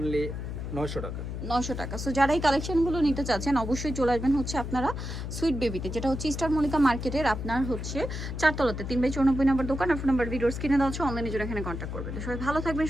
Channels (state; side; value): noise; left; hum, 6 dB below the sound